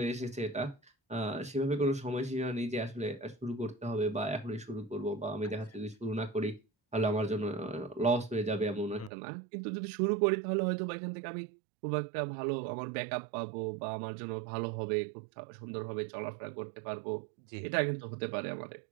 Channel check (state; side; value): drops out; left; at 9.1 s